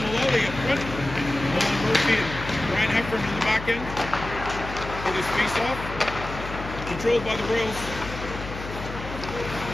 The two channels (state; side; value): noise; left; hum, 10 dB below the sound